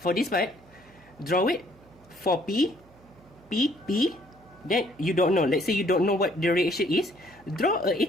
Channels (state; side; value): noise; right; hum, 27 dB below the sound